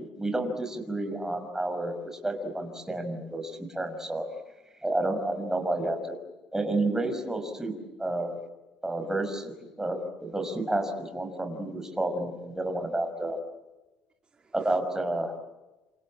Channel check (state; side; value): normal; both; correlation 0.85